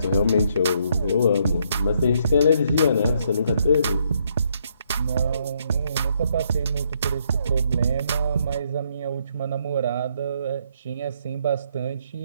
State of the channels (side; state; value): both; inverted; correlation -0.72